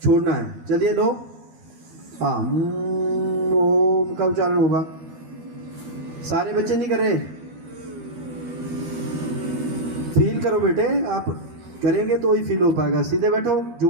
छोड़ना है। चलिए लो। हाँ, ओम का उच्चारण होगा। सारे बच्चे नहीं कर रहे। फील करो बेटे, आप करेंगे तो ही फील हो पाएगा। सीधे बैठो,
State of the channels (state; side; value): late; left; 13 ms